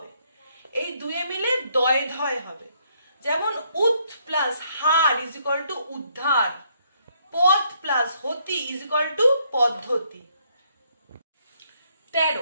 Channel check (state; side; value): inverted; both; correlation -0.71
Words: এই দুয়ে মিলে দয় ধয় হবে। যেমন উৎ plus her is equal two উদ্ধার, পথ প্লাস হতি ইজ ইকুয়াল টু পদ্ধতি।